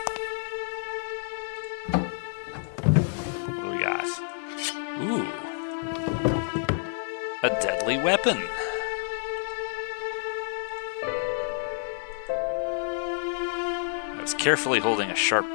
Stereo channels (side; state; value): right; silent; digital silence